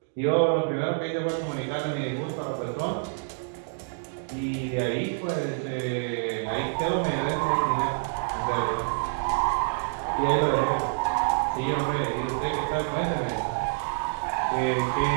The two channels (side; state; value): left; silent; digital silence